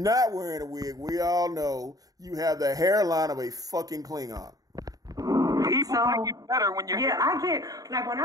wearing a wig, we all know you have the hairline of a fucking Klingon. People like it better when you're. Yeah, I get like when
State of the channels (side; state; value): left; late; 0.18 ms